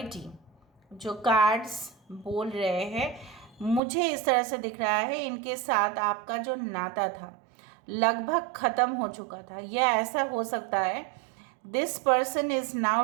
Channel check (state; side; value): drops out; left; at 3.8 s